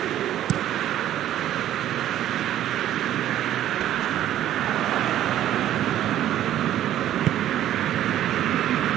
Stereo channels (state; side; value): quieter; left; 12.2 dB